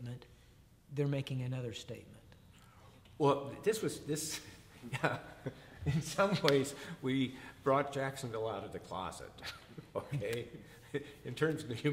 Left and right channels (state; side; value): identical; both; correlation 1.00